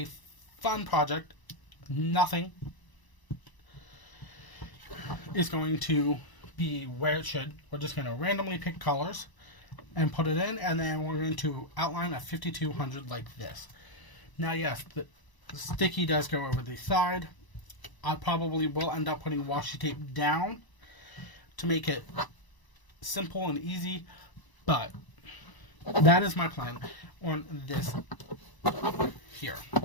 fun project. Nothing is going to be where it should. We're just going to randomly pick colors and put it in, and then we're going to outline a 5200 like this. Now yes, the sticky does go over the side. I probably will end up putting washi tape down to make it simple and easy, but that is my plan on this here.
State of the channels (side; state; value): right; late; 1.0 ms